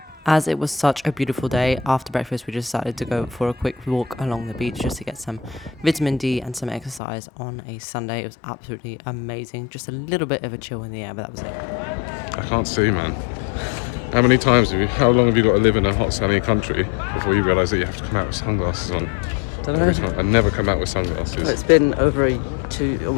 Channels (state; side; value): drops out; right; at 7.0 s